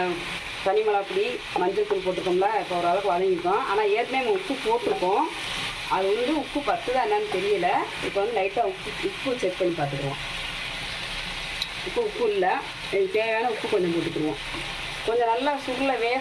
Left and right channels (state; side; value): identical; both; correlation 1.00